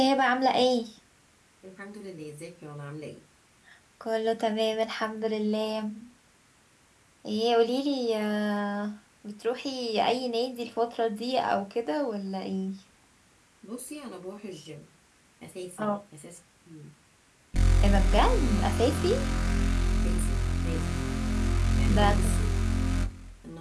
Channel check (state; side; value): identical; both; correlation 1.00